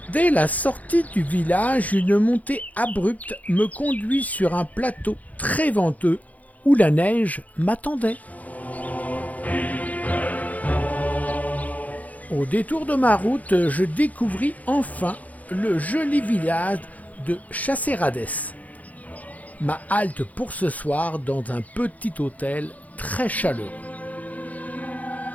Dès la sortie du village, une montée abrupte me conduit sur un plateau très venteux où la neige m'attendait. Au détour de ma route, je découvris enfin le joli village de Chasserades. Ma halte pour ce soir dans un petit hôtel très chaleureux.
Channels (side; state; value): right; late; 0.075 ms